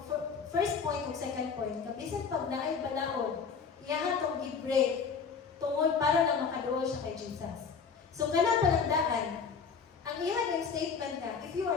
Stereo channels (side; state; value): right; quieter; 5.9 dB